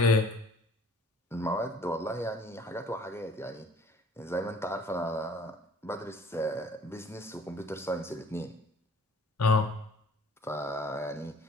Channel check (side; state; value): both; normal; correlation 0.53